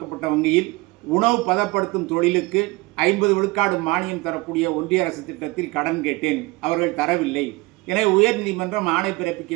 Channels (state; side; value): quieter; left; 22.7 dB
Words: வங்கியில் உணவு பதப்படுத்தும் தொழிலுக்கு 50 விழுக்காடு மானியம் தரக்கூடிய ஒன்றிய அரசு திட்டத்தில் கடன் கேட்டேன், அவர்கள் தரவில்லை. எனவே உயர்நீதிமன்றம் ஆணை பிறப்பிக்க